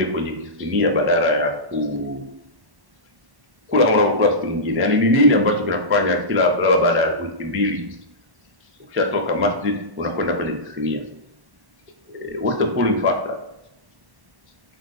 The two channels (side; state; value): left; late; 1.1 ms